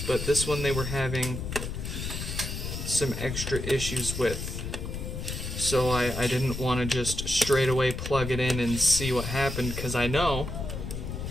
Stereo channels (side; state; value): left; noise; rumble, 5 dB below the sound